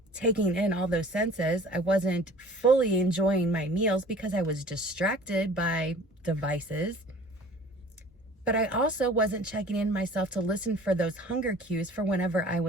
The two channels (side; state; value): both; normal; correlation 0.47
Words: taking in all those senses. I wasn't fully enjoying my meals because I was distracted by devices. But I also wasn't checking in myself to listen for those hunger cues for whenever I